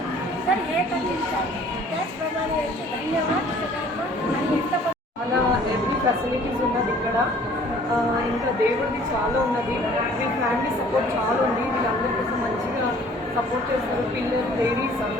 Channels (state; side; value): normal; both; correlation 0.54